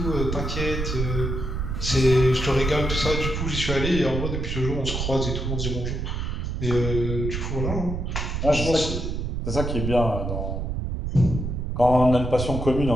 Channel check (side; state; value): right; noise; rumble, 3 dB below the sound